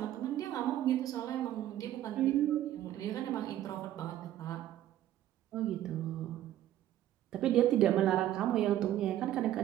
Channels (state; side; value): quieter; left; 12.8 dB